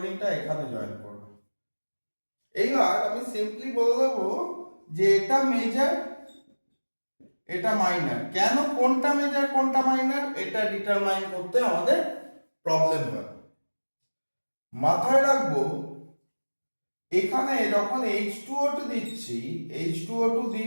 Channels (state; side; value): inverted; both; correlation -1.00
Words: এখানে জয়েন করবে। এইবার আমি সিম্পলি বলে দেবো যে এটা মেজর, এটা মাইনার। কেন কোনটা মেজর কোনটা মাইনার এটা ডিটারমাইন করতে আমাদের প্রবলেম হয়। মাথায় রাখবো এখানে যখন H2O2 দিচ্ছি, H2O2